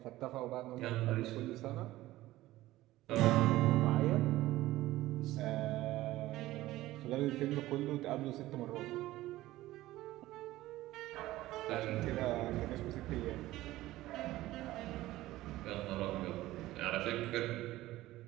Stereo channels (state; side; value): quieter; left; 16.5 dB